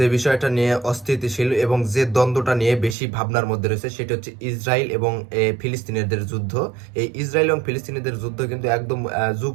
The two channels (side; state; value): left; drops out; at 3.0 s